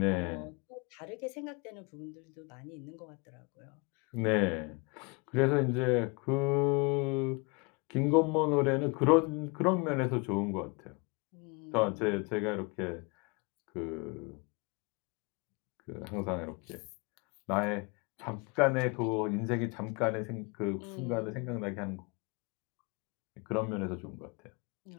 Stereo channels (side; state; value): right; quieter; 30.4 dB